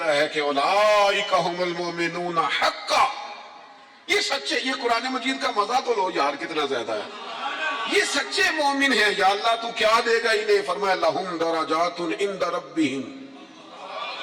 ہے کہ اولئک ھم المؤمنون حقا, یہ سچے. یہ قرآن مجید کا مزہ تو لو یار کتنا زیادہ ہے. یہ سچے مومن ہیں, یا اللہ تو کیا دے گا انہیں. فرمایا لہم درجات عند ربہم,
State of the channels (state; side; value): identical; both; correlation 1.00